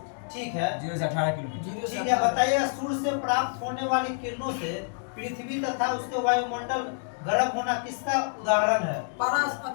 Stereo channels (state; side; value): silent; right; digital silence